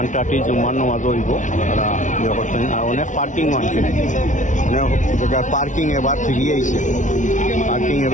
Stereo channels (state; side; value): late; right; 0.37 ms